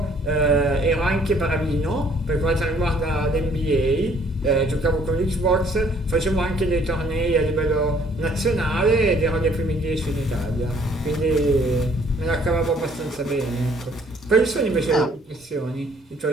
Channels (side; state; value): both; normal; correlation 0.61